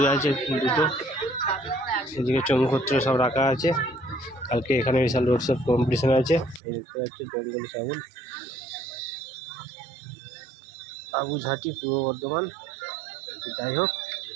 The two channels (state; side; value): drops out; left; at 6.6 s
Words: আছে দুটো। এদিকে চঙ্গুপত্র সব রাখা আছে। কালকে এখানে বিশাল রোড শো কম্পিটিশন আছে। এই দেখতে পাচ্ছি জঙ্গলি সাবুন, বাবুঝাটি, পূর্ব বর্ধমান। তো যাই হোক,